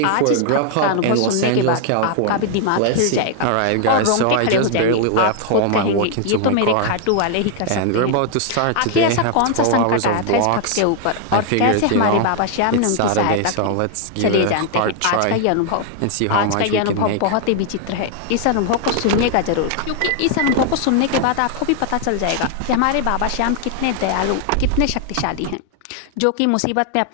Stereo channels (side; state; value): both; different; correlation 0.00